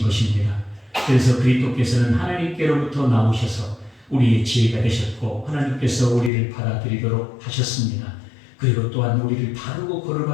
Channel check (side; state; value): right; drops out; at 6.3 s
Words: 것입니다. 그래서 그리스도께서는 하나님께로부터 나오셔서 우리의 지혜가 되셨고 하나님께서 우리를 받아들이도록 하셨습니다. 그리고 또한 우리를 바르고